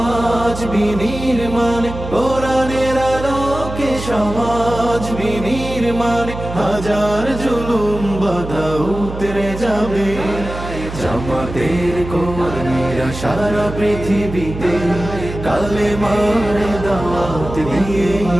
বিনির্মাণ, কোরআনের আলোকে সমাজ বিনির্মাণ, হাজার জুলুম বাধা উতরে যাবে। জামাতের কর্মীরা সারা পৃথিবীতে কালেমার দাওয়াত দিয়েই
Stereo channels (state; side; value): noise; right; hum, 9 dB below the sound